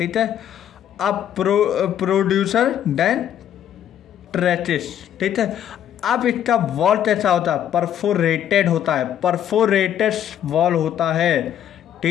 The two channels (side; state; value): right; quieter; 10.3 dB